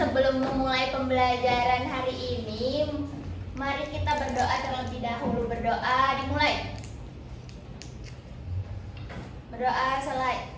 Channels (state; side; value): identical; both; correlation 1.00